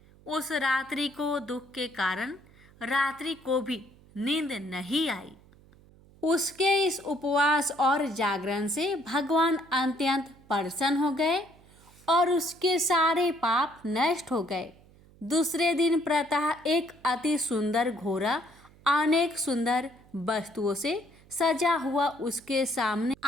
उस रात्रि को दुख के कारण रात्रि को भी नींद नहीं आई। उसके इस उपवास और जागरण से भगवान अत्यंत प्रसन्न हो गए और उसके सारे पाप नष्ट हो गए। दूसरे दिन प्रातः एक अति सुंदर घोड़ा अनेक सुंदर वस्तुओं से सजा हुआ उसके सामने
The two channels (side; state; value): right; noise; hum, 26 dB below the sound